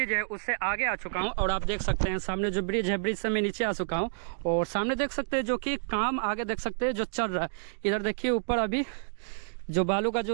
है उससे आगे आ चुका हूं, और आप देख सकते हैं सामने जो ब्रिज है, ब्रिज से मैं नीचे आ चुका हूं। और सामने देख सकते हैं जो कि काम आगे देख सकते हैं जो चल रहा है। इधर देखिए ऊपर अभी जो बालू का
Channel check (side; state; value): left; silent; digital silence